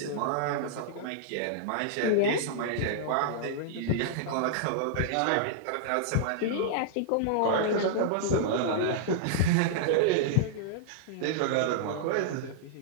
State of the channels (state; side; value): different; both; correlation -0.01